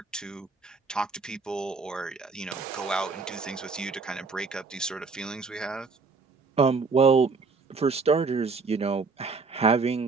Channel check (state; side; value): quieter; left; 4.5 dB